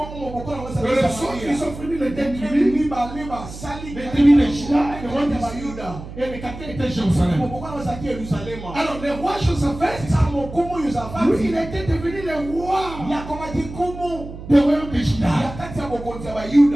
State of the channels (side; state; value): right; noise; hum, 12 dB below the sound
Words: ils ont fini les 10 tribus. Les tribus de Juda et le royaume d'Israël. Et les capteurs étaient Jérusalem. Alors le roi Josaphat, lui, il était devenu le roi du royaume de Juda.